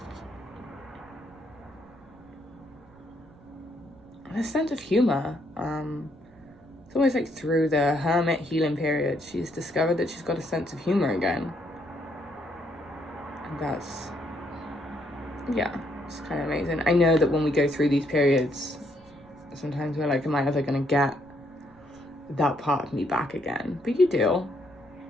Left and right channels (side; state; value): right; noise; rumble, 26 dB below the sound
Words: A sense of humor. It's always like through the Hermit healing period, she's discovered that she's got a sense of humor again. And that's, yeah, it's kind of amazing. I know that when we go through these periods, sometimes we're like, am I ever going to get that part of me back again? But you do,